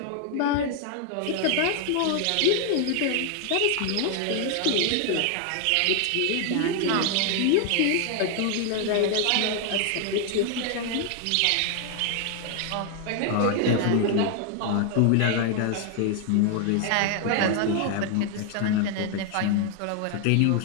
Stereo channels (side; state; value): both; different; correlation 0.00